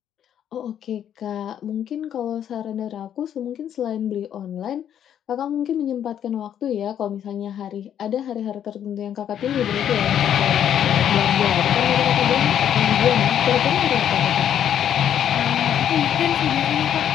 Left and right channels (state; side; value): quieter; right; 9.8 dB